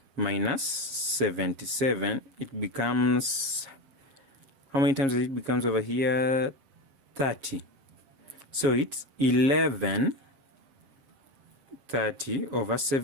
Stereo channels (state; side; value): late; left; 7.3 ms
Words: minus 77. It becomes, how many times it becomes over here? 30. So it's 11 30 over